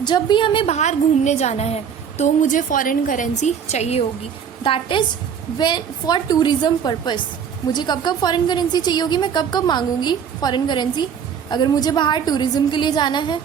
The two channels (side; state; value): left; quieter; 7.6 dB